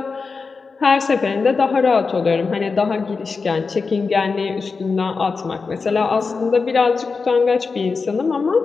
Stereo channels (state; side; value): quieter; right; 4.6 dB